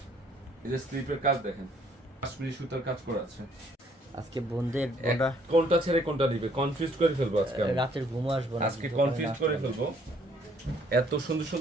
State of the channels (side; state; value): both; normal; correlation 0.64